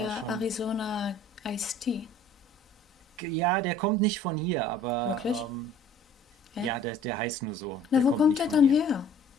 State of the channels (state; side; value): normal; both; correlation 0.52